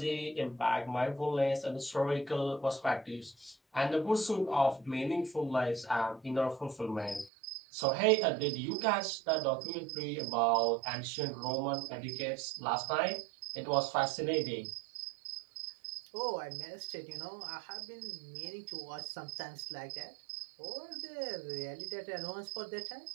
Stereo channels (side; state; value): left; drops out; at 7.3 s